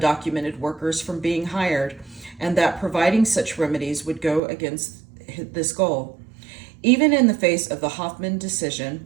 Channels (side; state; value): left; drops out; at 4.4 s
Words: workers from being hired, and that providing such remedies would go against this goal. Even in the face of the Hoffman